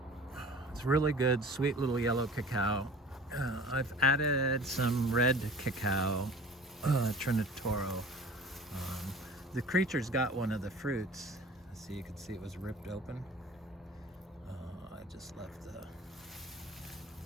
It's really good, sweet little yellow cacao. I've added some red cacao, Trinitoro. The creature's got one of the fruits. So you can see it was ripped open. I just left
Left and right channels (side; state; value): both; normal; correlation 0.43